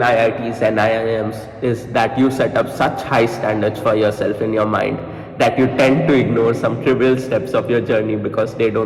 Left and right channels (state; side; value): identical; both; correlation 1.00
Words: and IIMs is that you set up such high standards for yourself in your mind that you tend to ignore some trivial steps of your journey because they